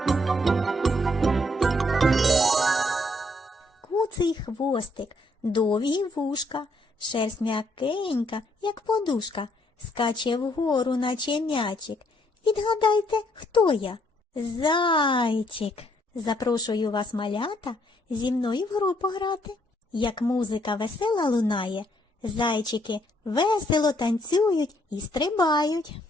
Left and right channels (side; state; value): both; normal; correlation 0.70